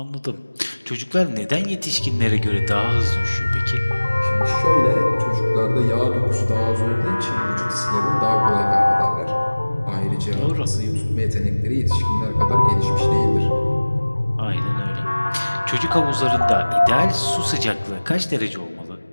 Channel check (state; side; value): inverted; both; correlation -1.00